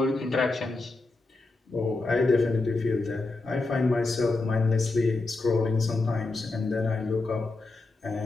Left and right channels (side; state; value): right; quieter; 3.4 dB